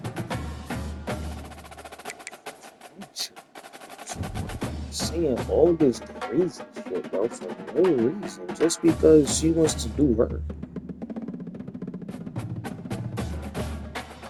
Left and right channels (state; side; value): identical; both; correlation 1.00